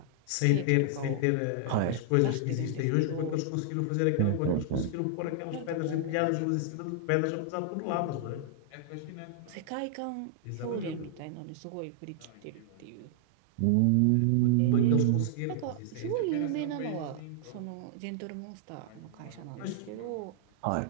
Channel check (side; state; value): both; different; correlation -0.01